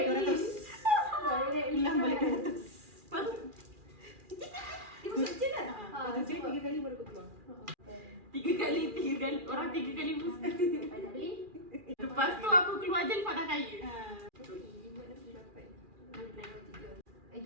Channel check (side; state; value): left; late; 2.4 ms